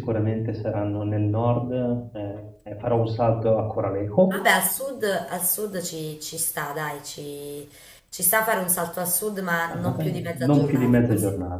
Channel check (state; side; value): identical; both; correlation 1.00